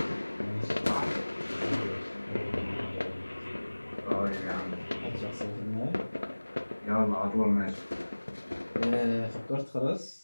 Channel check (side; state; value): both; inverted; correlation -1.00